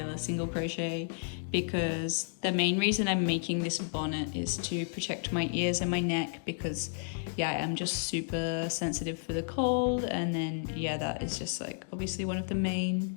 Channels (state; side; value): silent; right; digital silence